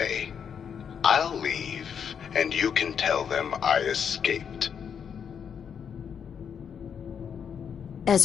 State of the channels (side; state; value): right; quieter; 7.4 dB